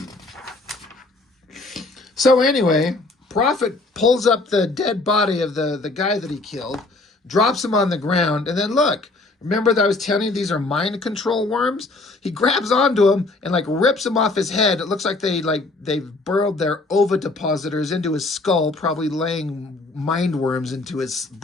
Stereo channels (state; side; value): quieter; right; 3.2 dB